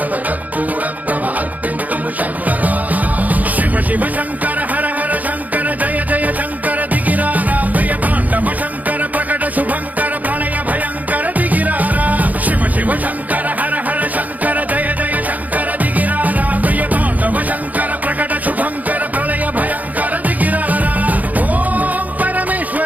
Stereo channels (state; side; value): late; left; 0.078 ms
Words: కర్పూర ప్రభ అర్పింతుము శంకరా శివ శివ శంకర